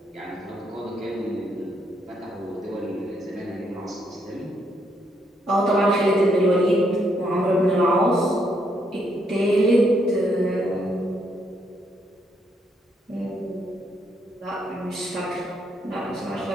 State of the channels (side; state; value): both; normal; correlation 0.75